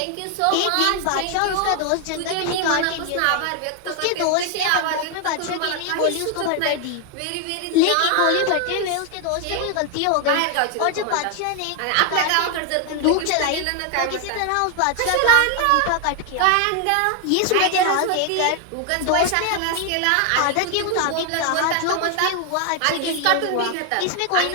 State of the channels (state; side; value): different; both; correlation 0.00